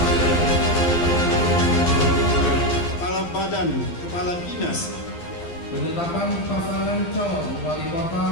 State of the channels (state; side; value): late; right; 12 ms